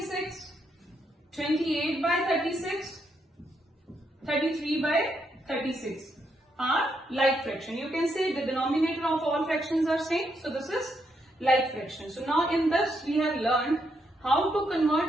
28 by 36, 33 by 36 are like fraction. You can say the denominator of all fractions are same. So this is like fraction. So now in this we have learned how to convert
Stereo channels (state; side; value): normal; both; correlation 0.78